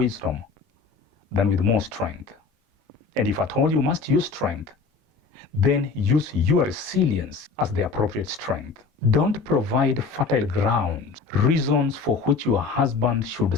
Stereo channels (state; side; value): quieter; right; 4.8 dB